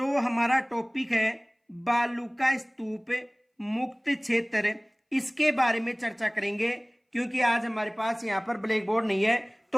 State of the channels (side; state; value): both; identical; correlation 1.00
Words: हमारा टॉपिक है बालू का स्तूप मुक्त क्षेत्र, इसके बारे में चर्चा करेंगे। क्योंकि आज हमारे पास यहाँ पर ब्लैक बोर्ड नहीं है,